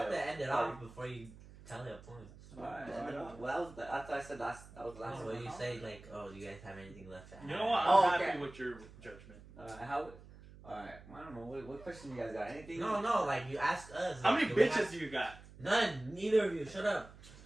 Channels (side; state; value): right; noise; hum, 19 dB below the sound